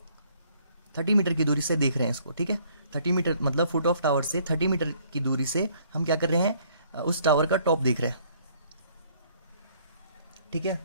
30 मीटर की दूरी से देख रहे हैं इसको, ठीक है, 30 मीटर मतलब फुट ऑफ टावर से 30 मीटर की दूरी से हम क्या कर रहे हैं, उस टावर का टॉप देख रहे हैं, ठीक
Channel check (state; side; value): inverted; both; correlation -0.62